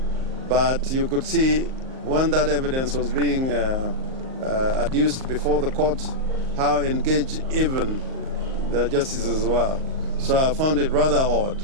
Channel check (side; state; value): left; late; 38 ms